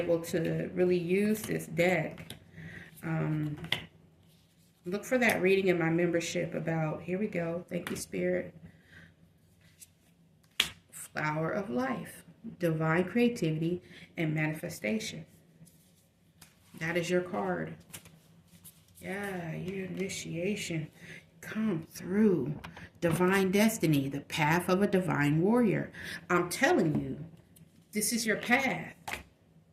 to really use this deck. Look for that reading in my membership about, here we go. Thank you, Spirit. Flower of life, divine creativity, and manifestation. That is your card. Yeah, your initiation. Come through. Divine destiny, the path of a divine warrior. I'm telling you, this is your path.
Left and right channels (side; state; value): both; identical; correlation 1.00